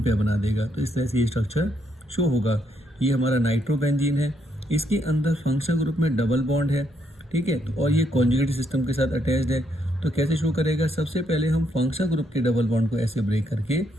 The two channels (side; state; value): both; normal; correlation 0.75